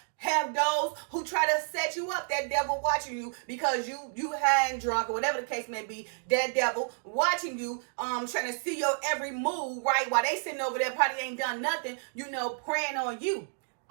Have those who try to set you up, that devil watching you because you high and drunk or whatever the case may be, that devil watching you, trying to see your every move, right? While they sitting over there probably ain't done nothing, preying on you.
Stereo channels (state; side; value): silent; left; digital silence